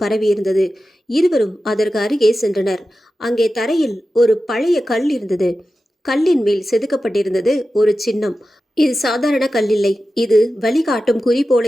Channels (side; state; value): both; normal; correlation 0.93